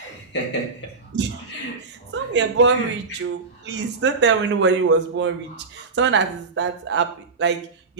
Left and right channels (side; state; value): left; quieter; 4.4 dB